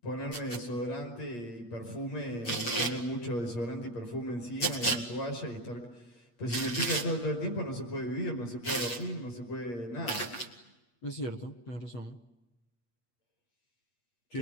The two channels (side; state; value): right; late; 8.4 ms